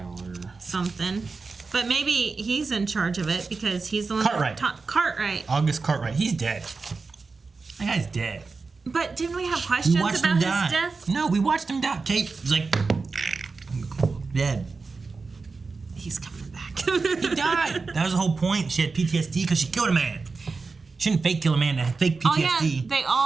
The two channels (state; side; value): quieter; left; 4.3 dB